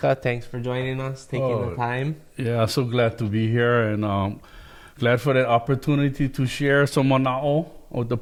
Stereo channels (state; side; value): identical; both; correlation 1.00